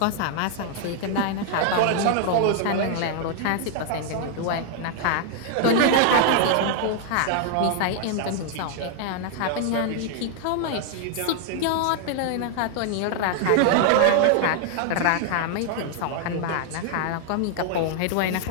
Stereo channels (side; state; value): both; different; correlation 0.00